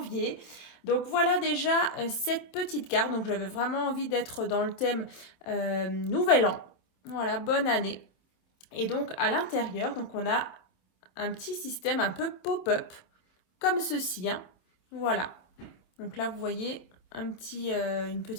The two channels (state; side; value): late; right; 27 ms